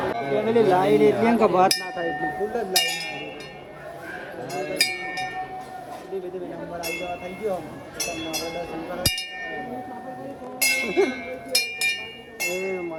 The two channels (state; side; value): identical; both; correlation 1.00